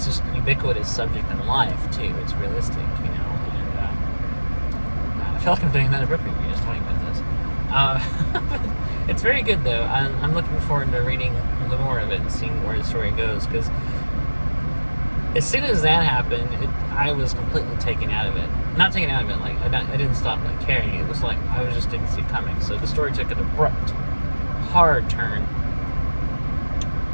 just ubiquitous subject in life too. It's realistic, and I feel like I'm doing another book review just talking about this. It's very good though. I'm looking forward to reading the more of it and seeing where the story goes, because as soon as that happened, I was completely taken out of it. Not taken out of it, like I didn't stop caring. It was like I just didn't see it coming. So the story took an abrupt, hard turn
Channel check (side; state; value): both; inverted; correlation -1.00